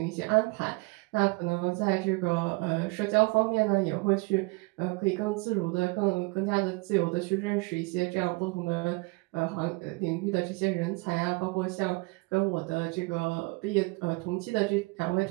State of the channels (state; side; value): quieter; left; 26.5 dB